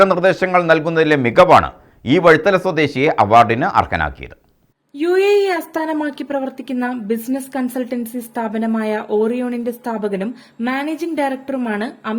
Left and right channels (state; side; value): identical; both; correlation 1.00